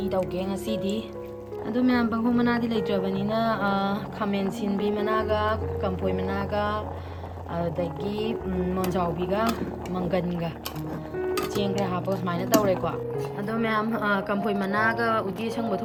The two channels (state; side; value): identical; both; correlation 1.00